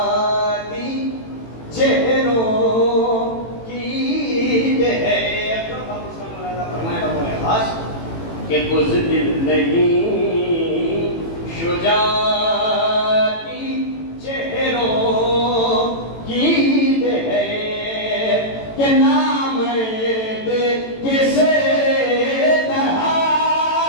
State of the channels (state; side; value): late; right; 18 ms